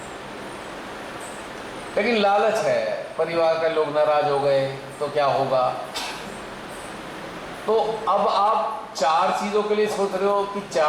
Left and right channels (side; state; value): both; identical; correlation 1.00